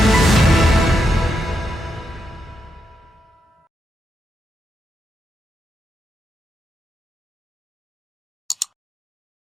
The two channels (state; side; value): normal; both; correlation 0.83